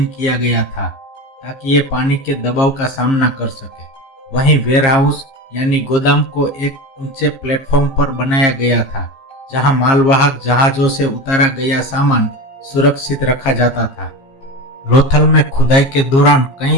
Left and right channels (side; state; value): right; late; 15 ms